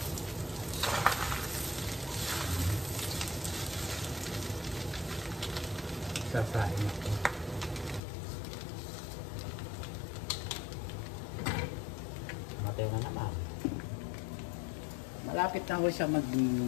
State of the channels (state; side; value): drops out; right; at 8.0 s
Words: Sasain ako. Matay na naman. Malapit na ako siya mag